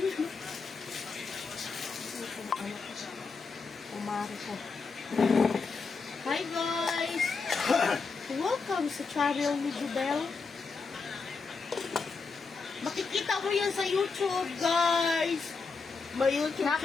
Ano ko sa umari ko. Hi guys! Welcome sa Travel ni Jubel. Makikita mo yan sa YouTube, guys! May YouTube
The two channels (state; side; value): quieter; right; 4.7 dB